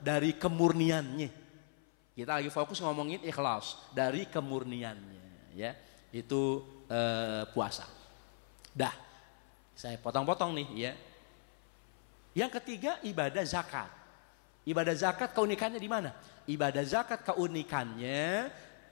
kemurniannya. Kita lagi fokus ngomongin ikhlas. Dari kemurniannya, ya. Itu puasa. Dah, saya potong-potong nih, ya. Yang ketiga, ibadah zakat. Ibadah zakat keunikannya di mana? Ibadah zakat keunikannya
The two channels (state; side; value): silent; right; 52 dB below the other